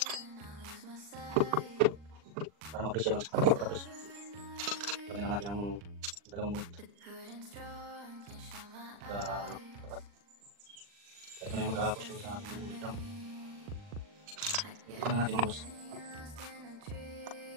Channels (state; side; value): late; left; 40 ms